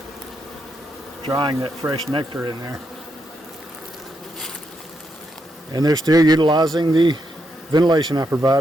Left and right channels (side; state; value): both; normal; correlation 0.81